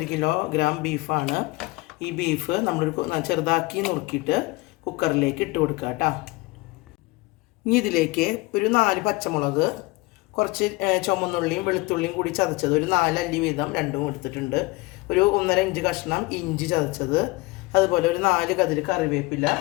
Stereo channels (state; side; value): quieter; right; 23.0 dB